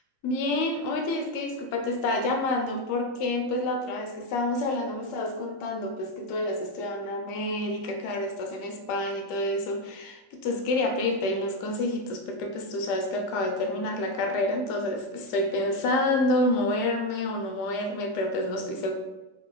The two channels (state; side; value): late; right; 2.4 ms